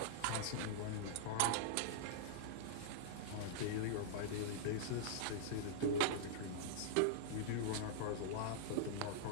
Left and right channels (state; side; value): different; both; correlation -0.02